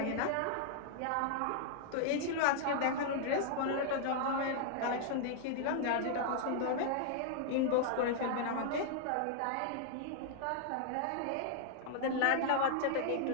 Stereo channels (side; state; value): both; different; correlation -0.01